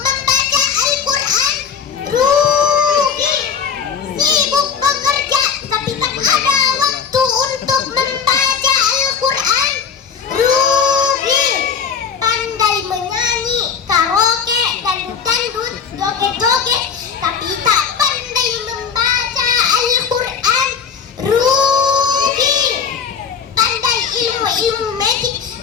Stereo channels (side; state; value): right; quieter; 6.7 dB